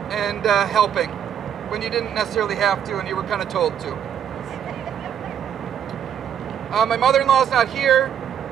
and helping when you didn't necessarily have to and you were kind of told to. My mother-in-law's not here.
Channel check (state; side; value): quieter; left; 9.0 dB